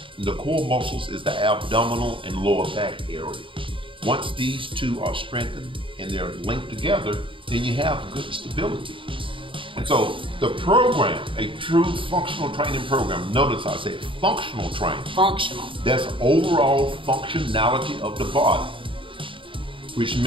And the core muscles is the abdominal and lower back area. Once these two are strengthened and they're linked together, then you have good stability. And so the program, a true functional training program, notice I said functional training. Functional. That's overall functionality of the body,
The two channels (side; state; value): left; late; 0.25 ms